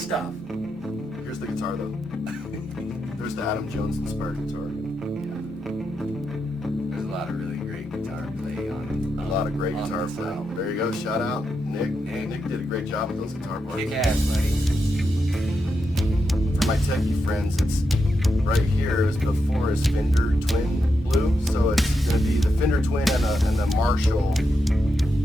Here's the guitar though. There's the Adam Jones inspired guitar. There's a lot of really great guitar play on. A lot of great on guitar this playing. album. There you go, shout out. Nick. Nick. Nick did a great job with those guitar parts. Kick ass, buddy. For my techie friends, it's right here is before his Fender Twin Blue. So it's going to be the Fender Twin and the Marshall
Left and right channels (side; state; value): both; normal; correlation 0.85